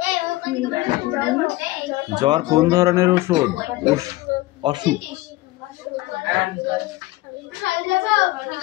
জ্বর কোন ধরনের ওষুধ? অসুখ।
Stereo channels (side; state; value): right; quieter; 18.6 dB